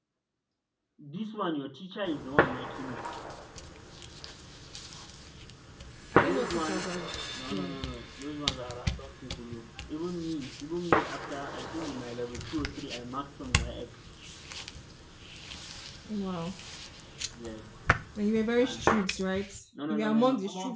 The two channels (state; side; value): identical; both; correlation 1.00